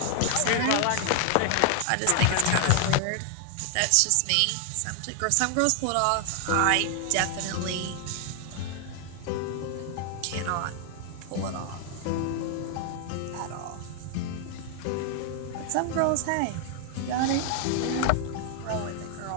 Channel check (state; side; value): different; both; correlation 0.00